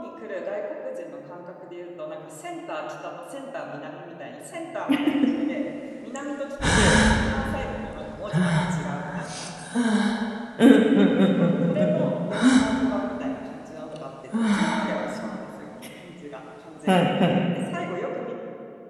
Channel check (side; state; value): both; identical; correlation 1.00